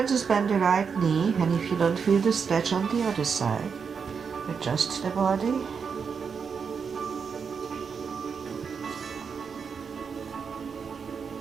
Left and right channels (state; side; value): quieter; left; 6.1 dB